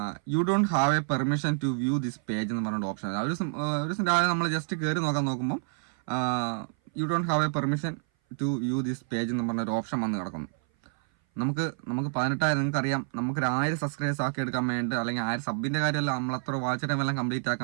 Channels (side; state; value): left; silent; 57 dB below the other